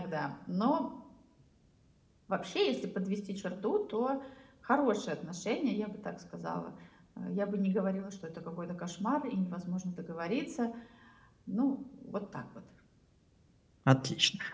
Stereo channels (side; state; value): both; identical; correlation 1.00